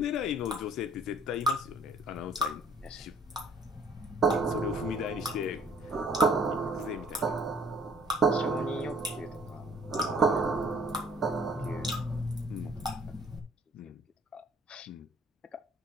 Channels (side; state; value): both; normal; correlation 0.57